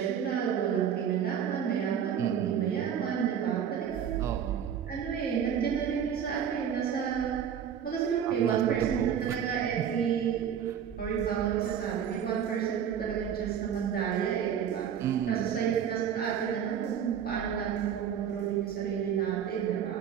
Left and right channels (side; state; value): left; quieter; 8.5 dB